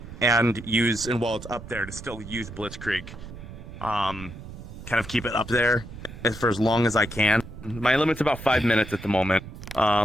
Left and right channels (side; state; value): right; noise; rumble, 13 dB below the sound